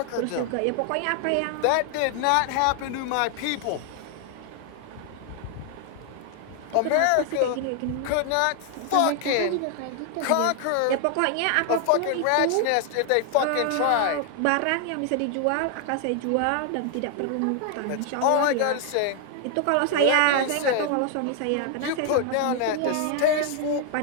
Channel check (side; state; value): both; different; correlation 0.00